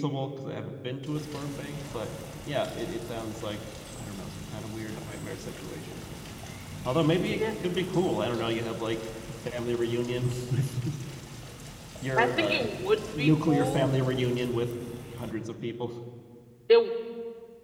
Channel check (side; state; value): both; identical; correlation 1.00